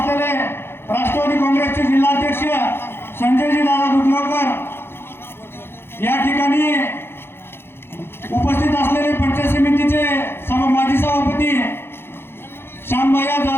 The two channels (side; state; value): right; late; 0.11 ms